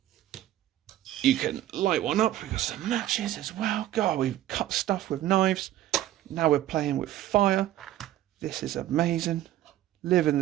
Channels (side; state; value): left; quieter; 13.4 dB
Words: you can light one up. We've got some matches as well. God, we've cut stuff with knives. Now we're playing with fire. This is amazing. Living